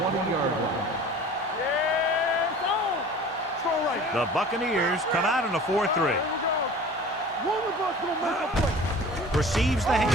line. Yes, on. Throw right. The Buccaneers come out in a 4-3. Here we go. One of us gonna make a play. Receives the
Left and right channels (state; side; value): normal; both; correlation 0.42